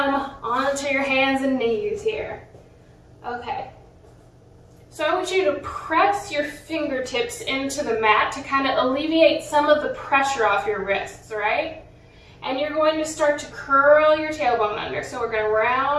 onto your hands and knees here. Okay. So I want you to press your fingertips into the mat to kind of alleviate some of the pressure off your wrists, right? And you're going to start to curl your tailbone under. So we're going to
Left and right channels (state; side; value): identical; both; correlation 1.00